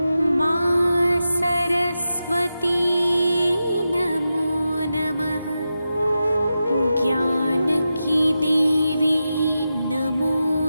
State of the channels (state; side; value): inverted; both; correlation -0.91